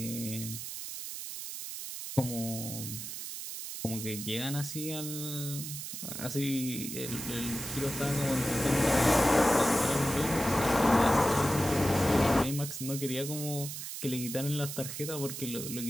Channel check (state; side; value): noise; right; hiss, 7 dB below the sound